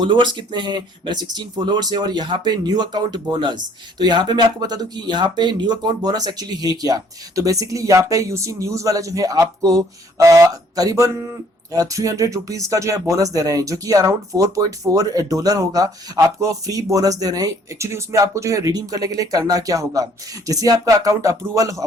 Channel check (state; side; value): normal; both; correlation 0.60